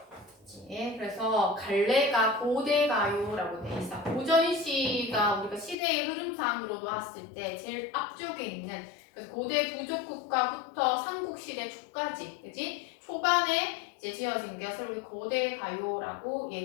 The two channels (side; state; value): right; drops out; at 5.8 s